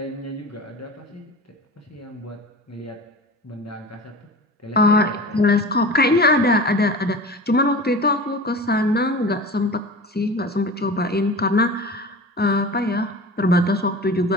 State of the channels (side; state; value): both; normal; correlation 0.35